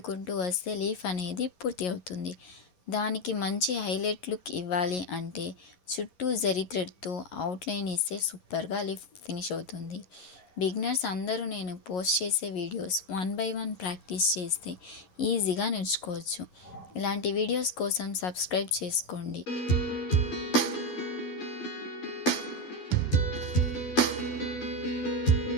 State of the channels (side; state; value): right; late; 11 ms